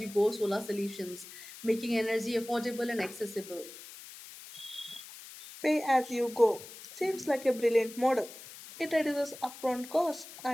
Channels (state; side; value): noise; left; hiss, 15 dB below the sound